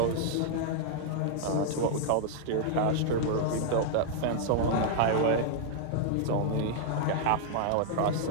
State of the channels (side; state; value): both; different; correlation -0.01